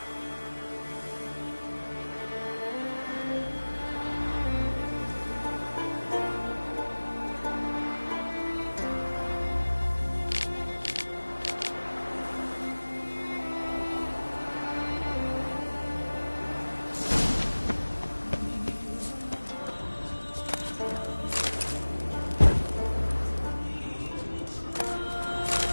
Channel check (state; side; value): inverted; both; correlation -1.00